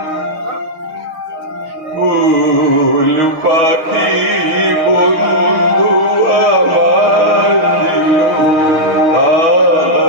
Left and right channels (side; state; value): left; late; 6.0 ms